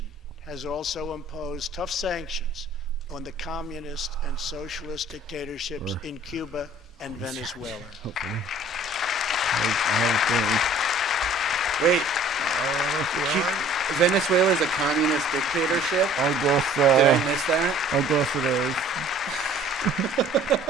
has also imposed tough sanctions on the communist and socialist dictatorships Sure. in Cuba and Venezuela. Hopefully. I have a feeling. Wait, Venezuela is a communist dictatorship? I guess Did I miss that? I guess it is.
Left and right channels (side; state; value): both; normal; correlation 0.52